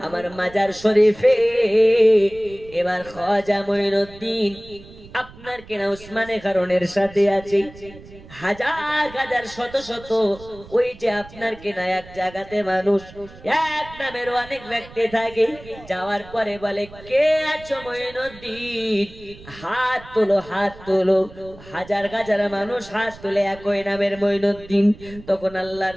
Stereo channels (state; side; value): noise; right; rumble, 19 dB below the sound